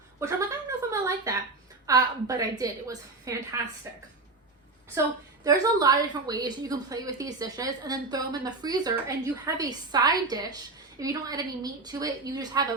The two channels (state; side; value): quieter; left; 3.5 dB